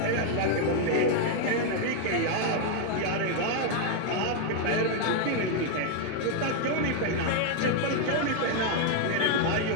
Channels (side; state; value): both; different; correlation 0.00